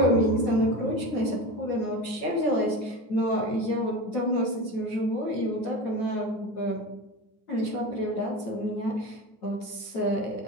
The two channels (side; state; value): right; late; 9.5 ms